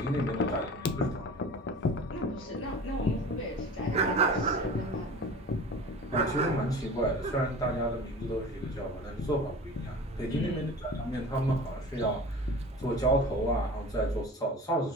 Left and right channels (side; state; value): both; normal; correlation 0.38